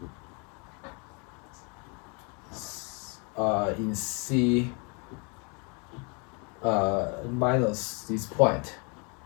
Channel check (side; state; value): right; quieter; 33.6 dB